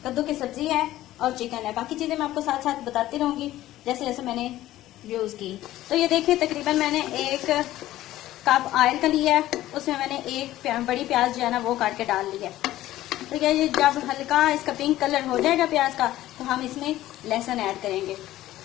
कद्दू की सब्जी है और चिकन है। बाकी चीजें मैं आपको साथ साथ बताती रहूंगी जैसे जैसे मैंने यूज की। तो ये देखिए, तकरीबन मैंने 1 कप ऑयल का लिया है, उसमें मैंने एक बड़ी प्याज जो है ना वो काट के डाल ली है। तो ये जब हल्का इसका पिंक कलर हो जाएगा प्याज का तो हम इसमें लहसुन ऐड करेंगे।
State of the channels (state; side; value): quieter; right; 14.9 dB